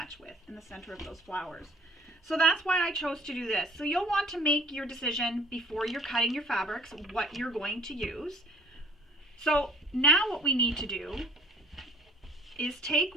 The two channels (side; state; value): both; normal; correlation 0.55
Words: with, in the center of those flowers. So that's why I chose to do this. So you'll want to make your decision before you're cutting your fabrics what you're going to use. So now what we need to do is